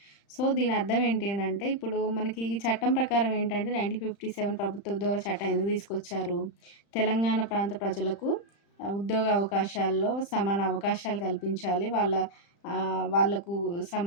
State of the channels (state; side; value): late; right; 35 ms